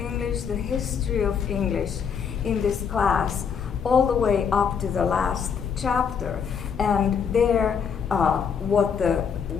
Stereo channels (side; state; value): right; quieter; 6.8 dB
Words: the history of English in this class, all the way up to the last chapter. And there, what the